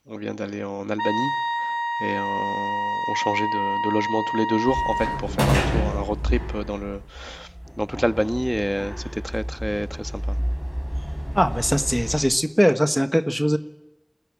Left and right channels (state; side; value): identical; both; correlation 1.00